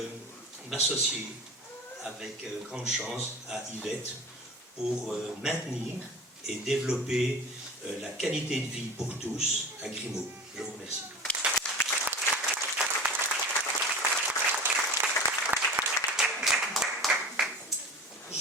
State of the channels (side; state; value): both; normal; correlation 0.35